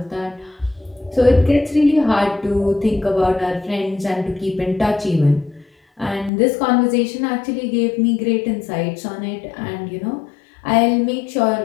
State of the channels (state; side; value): drops out; right; at 6.3 s